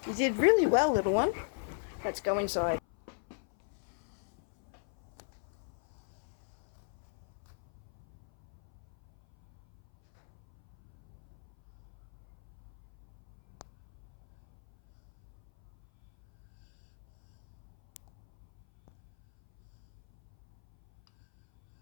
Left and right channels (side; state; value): right; silent; 53 dB below the other